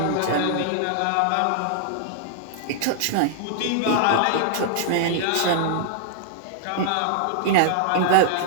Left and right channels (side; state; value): both; different; correlation -0.01